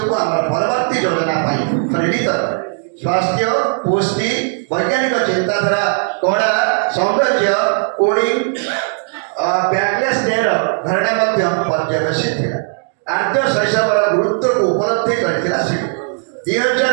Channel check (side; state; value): left; silent; digital silence